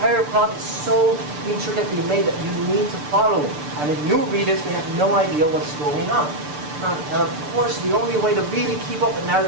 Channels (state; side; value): late; left; 6.8 ms